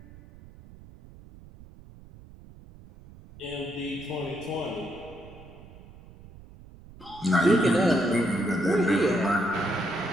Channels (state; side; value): noise; right; rumble, 20 dB below the sound